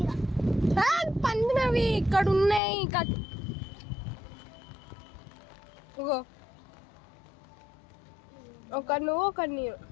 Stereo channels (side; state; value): right; drops out; at 2.6 s